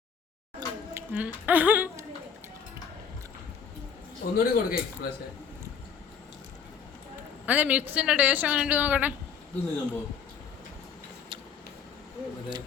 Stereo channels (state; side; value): quieter; right; 6.9 dB